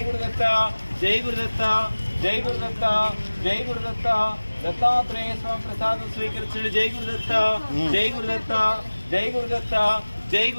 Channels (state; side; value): inverted; both; correlation -1.00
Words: గురుదత్త, జై గురుదత్త, జై గురుదత్త, జై గురుదత్త, దత్తాత్రేయ స్వామి ప్రసాదం స్వీకరించండి. జై గురుదత్త, జై గురుదత్త, జై గురుదత్త, జై